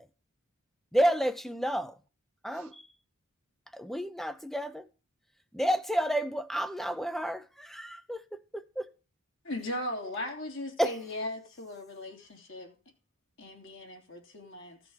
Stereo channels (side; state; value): both; normal; correlation 0.77